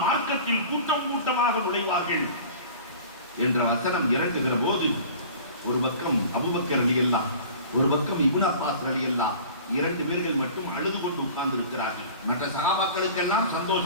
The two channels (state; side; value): inverted; both; correlation -0.42